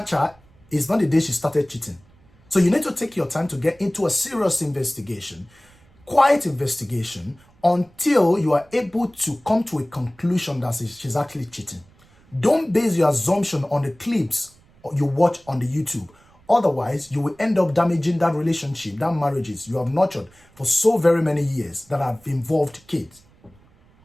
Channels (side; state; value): right; noise; rumble, 30 dB below the sound